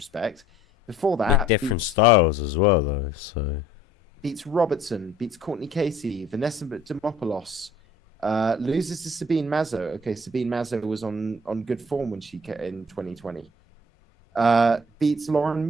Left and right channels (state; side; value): normal; both; correlation 0.54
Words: Before that, with different styles as well, though. So beats Robertson, beats Courtney Casey, Vanessa Demopoulos, loses to Sabine Mazo. Okay, Sabine Mazo was on good form when she came in 2020. Beats Lauren